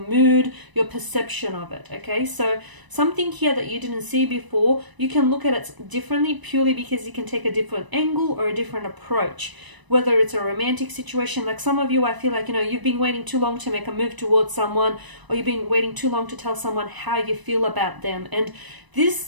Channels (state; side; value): late; left; 1.0 ms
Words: mood, your perception of it. Okay, so something here that you didn't see before, you can look at it differently purely because you can take a different angle or a different approach. Whether it's a romantic situation, like some of you, I feel like, you've been waiting too long to make a move towards someone, or you've been waiting too long to tell someone how you feel about them. And